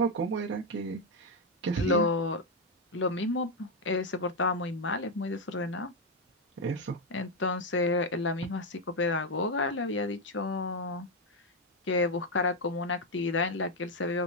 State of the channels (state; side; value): normal; both; correlation 0.04